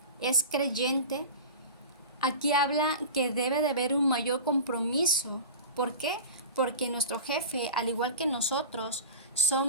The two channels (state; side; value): inverted; both; correlation -0.31